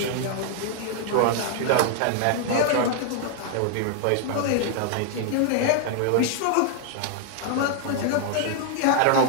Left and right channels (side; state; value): both; different; correlation 0.00